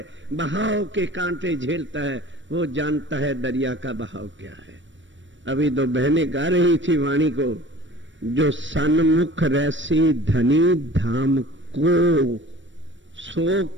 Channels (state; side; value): late; left; 0.55 ms